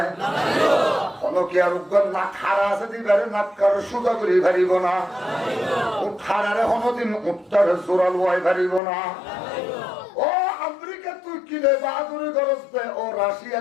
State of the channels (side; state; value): right; drops out; at 8.8 s